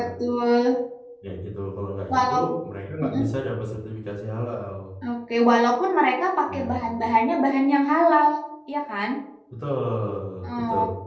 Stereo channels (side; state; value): both; identical; correlation 1.00